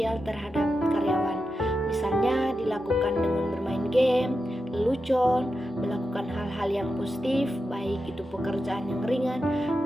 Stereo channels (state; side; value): normal; both; correlation 0.89